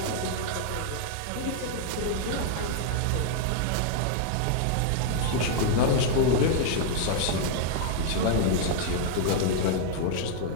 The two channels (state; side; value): different; both; correlation -0.01